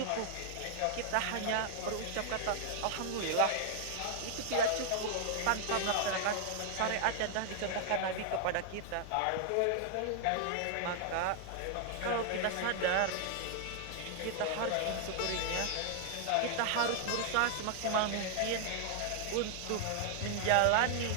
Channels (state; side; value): different; both; correlation 0.00